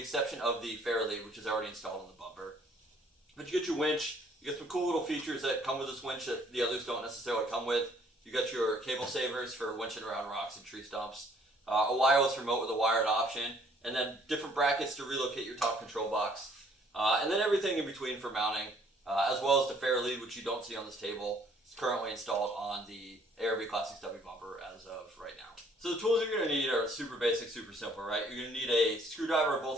exception of the fairlead, which is already installed on the bumper. But you get your winch, you get some cool little features that come with this winch that the others don't necessarily come with. You got your cable savers for winching around rocks and tree stumps, a wireless remote with a wired option, and then different brackets to relocate your top control box, and then everything in between for mounting, as well as the fairlead, which you don't see on this table. It's currently installed on the ARB Classic Stubby Bumper as of right now. So the tools you're going to need are super basic, super simple, right? You're going to need a screwdriver of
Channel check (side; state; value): both; normal; correlation 0.61